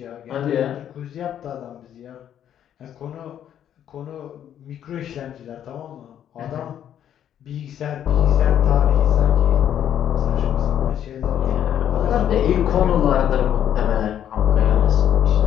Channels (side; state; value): right; quieter; 10.1 dB